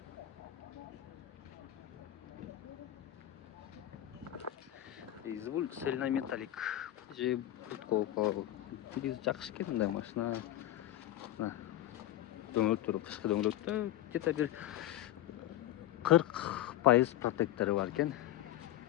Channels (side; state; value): right; quieter; 13.7 dB